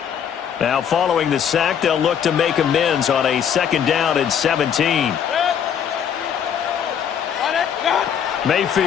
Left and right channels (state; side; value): quieter; right; 8.3 dB